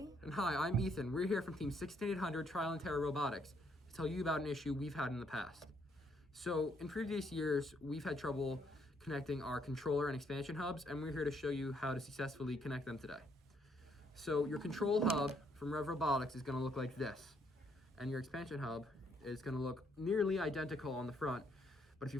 And hi, I'm Ethan. We're here from Team 16800 Trial and Terror Robotics to tell you about an issue we've had in the past. So, in previous years, we've had trouble connecting our controller and expansion hubs, and we're here to show you how to successfully connect them today. So, your control hub from Rev Robotics is going to look like this, and your expansion hub is going to look nearly identical on the front, but if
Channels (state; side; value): normal; both; correlation 0.71